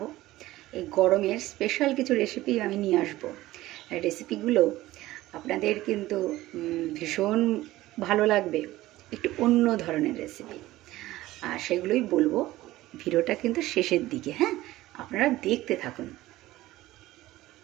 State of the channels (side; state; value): left; quieter; 16.7 dB